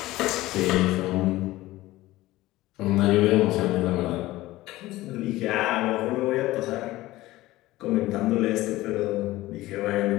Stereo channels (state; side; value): quieter; right; 17.6 dB